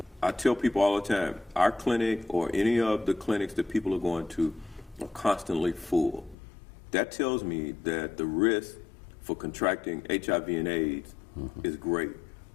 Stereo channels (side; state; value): right; drops out; at 6.4 s